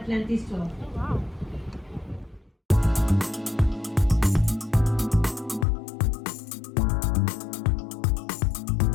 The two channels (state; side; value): drops out; right; at 5.7 s